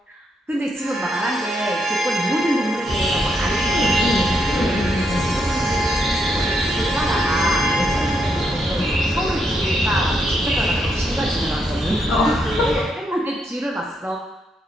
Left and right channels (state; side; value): normal; both; correlation 0.78